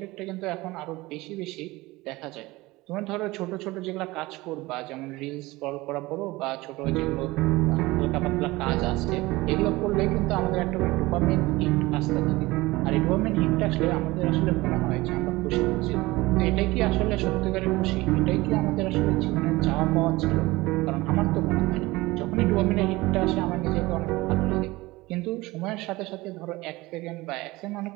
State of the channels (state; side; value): quieter; left; 20.5 dB